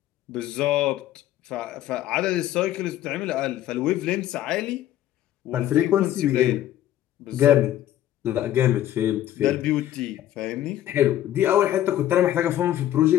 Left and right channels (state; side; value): quieter; right; 12.5 dB